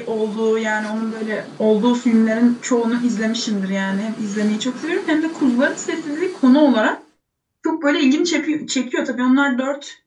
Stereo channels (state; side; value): identical; both; correlation 1.00